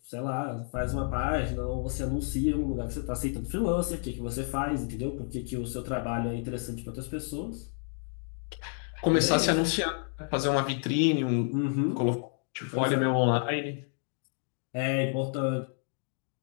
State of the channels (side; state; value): right; silent; 58 dB below the other